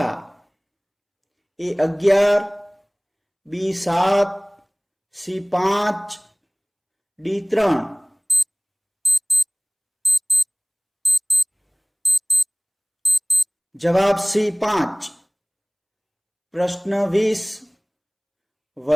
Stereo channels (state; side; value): identical; both; correlation 1.00